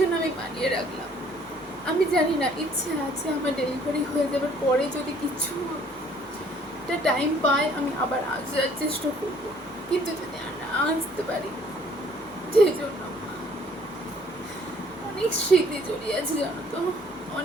আমি বানিয়ে রাখলাম। আমি জানি না, ইচ্ছে আছে আমার ডেলিভারি হয়ে যাবার পরে যদি কিছু একটা টাইম পাই আমি আবার আসার চেষ্টা করবো, কিন্তু যদি আর না আসতে পারি, সেই জন্য অনেক স্মৃতি জড়িয়ে আছে, জানো তো,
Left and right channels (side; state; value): both; normal; correlation 0.59